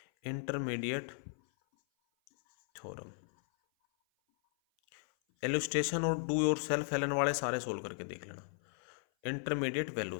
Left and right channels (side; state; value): right; silent; 54 dB below the other